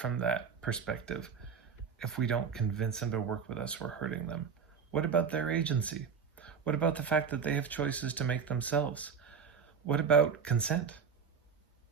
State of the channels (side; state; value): left; quieter; 6.4 dB